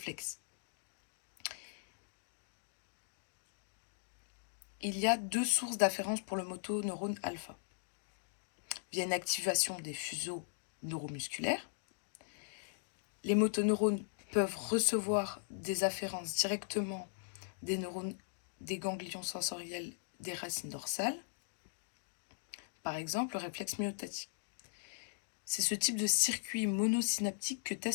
? il y a deux sources d'afférence pour le motoneurone alpha. Via une activation des fuseaux neuromusculaires, les motoneurones peuvent recevoir des afférences directement des neurones des ganglions sensoriels des racines dorsales, par exemple le réflexe myotatique. C'est ce type de circuit monosynaptique que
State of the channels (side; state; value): right; silent; digital silence